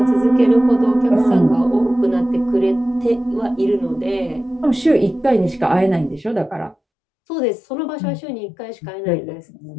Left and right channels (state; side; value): drops out; right; at 6.8 s